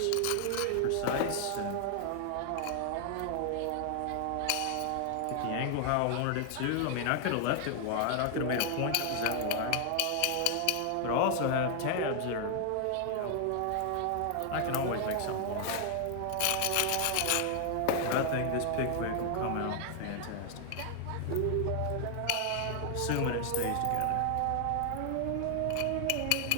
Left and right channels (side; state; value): both; different; correlation 0.00